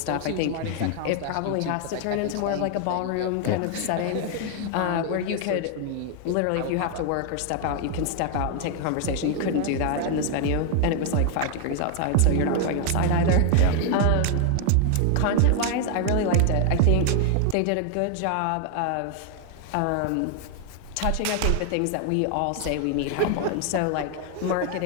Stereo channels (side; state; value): both; different; correlation 0.00